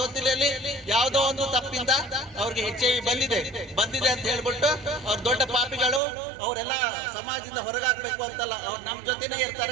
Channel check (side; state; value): left; drops out; at 6.0 s